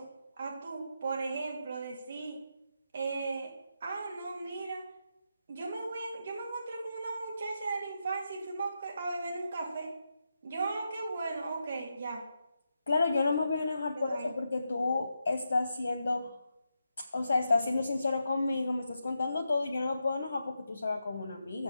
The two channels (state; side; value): inverted; both; correlation -0.86